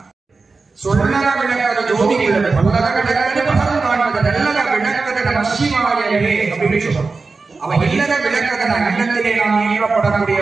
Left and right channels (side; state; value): left; quieter; 4.1 dB